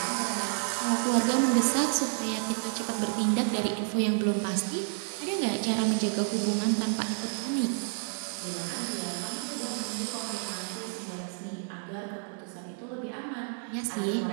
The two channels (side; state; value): left; silent; 58 dB below the other